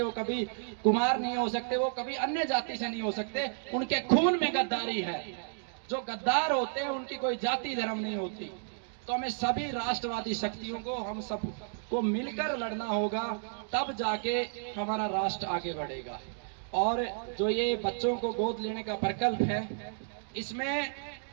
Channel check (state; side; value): silent; left; digital silence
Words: वो कभी कुमार नहीं हो सकते, वो कभी अन्य जाति से नहीं हो सकते। उनके खून में गद्दारी है। जो गद्दार होते हैं उनकी कोई जाति धर्म नहीं होती। तो हमें सभी राष्ट्रवादी शक्तियों को, हम सब को मिलकर लड़ना होगा, तब जाके हमारा राष्ट्र आगे बढ़ेगा। और जो ये बच्चों को गोद लेने का प्रकल्प है, इसमें